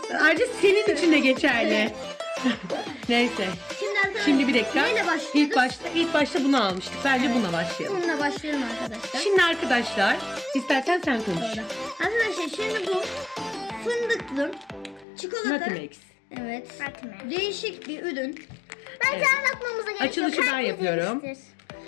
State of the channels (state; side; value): drops out; right; at 15.1 s